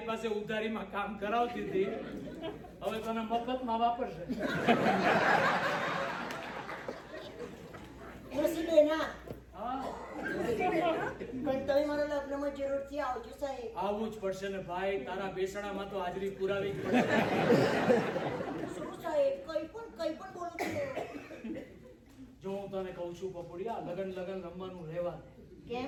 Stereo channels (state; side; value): identical; both; correlation 1.00